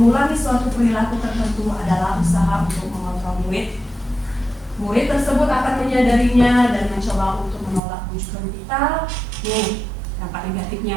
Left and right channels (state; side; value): drops out; left; at 7.8 s